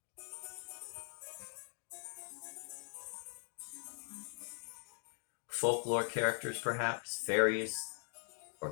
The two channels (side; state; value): right; silent; digital silence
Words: Folklore characters, perhaps, fairies, or